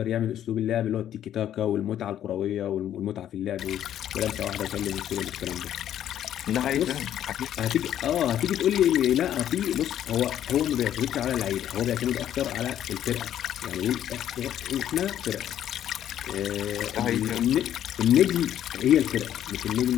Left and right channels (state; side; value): quieter; right; 11.0 dB